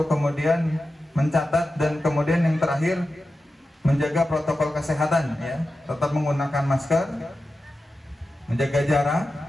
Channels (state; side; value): normal; both; correlation 0.92